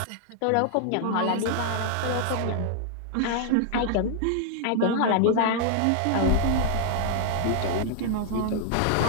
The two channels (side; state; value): both; different; correlation 0.00